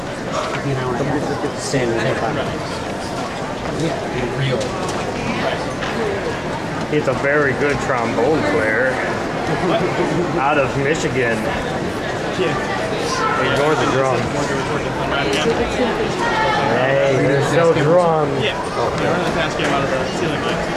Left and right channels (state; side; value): noise; right; hum, 27 dB below the sound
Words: He's a very good trombone player. Out of Michigan. Ignore the drums. Hey, there's no drums. Yeah. I run the fast game out of the ceiling light.